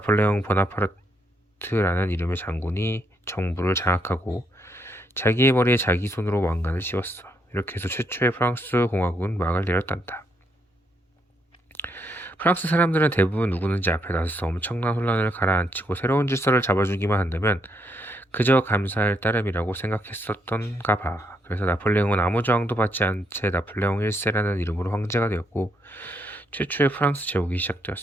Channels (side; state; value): both; normal; correlation 0.75